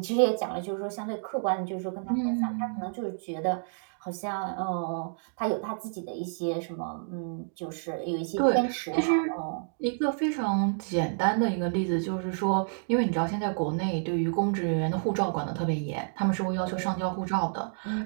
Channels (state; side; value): silent; left; digital silence